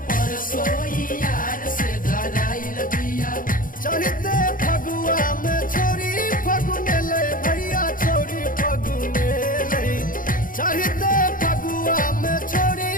परसोई यार से धराइल बिया। चढ़ते फगुआ में छोरी फगुनेलै भैया छोरी फगुनेलै। चढ़ते फगुआ में छोरी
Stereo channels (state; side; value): late; right; 0.40 ms